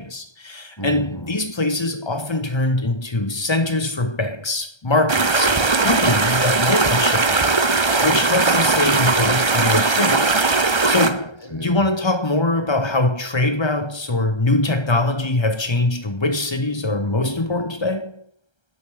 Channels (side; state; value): right; late; 1.3 ms